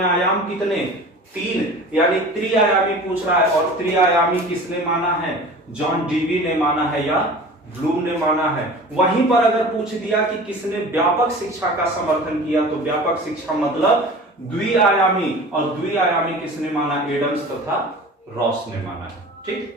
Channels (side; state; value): both; normal; correlation 0.39